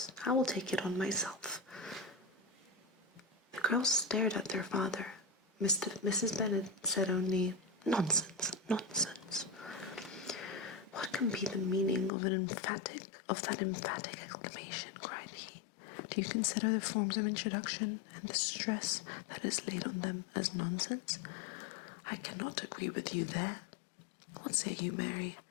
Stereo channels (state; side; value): drops out; right; at 12.1 s